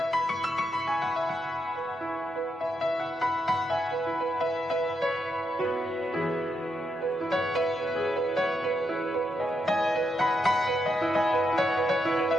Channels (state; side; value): normal; both; correlation 0.82